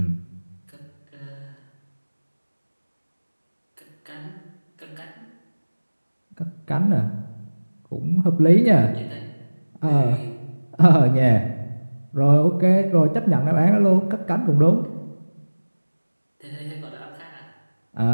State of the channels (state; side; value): inverted; both; correlation -1.00